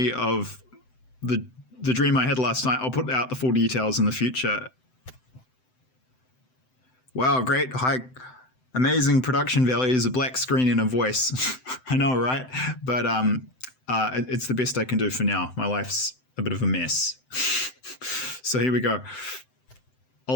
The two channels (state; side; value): late; right; 7.8 ms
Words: of the dream I had last night. I'll put out the full details in the future. Wow, great, high, amazing production values, a black screen and a voice. I know, right? But it's the best I can do for now. My life's a bit of a mess. So here we go.